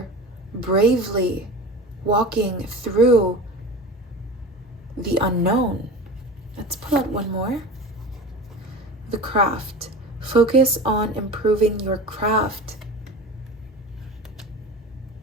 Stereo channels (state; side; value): normal; both; correlation 0.33